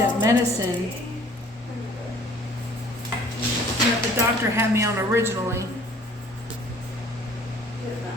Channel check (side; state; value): both; normal; correlation 0.54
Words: medicine that the doctor had me on originally.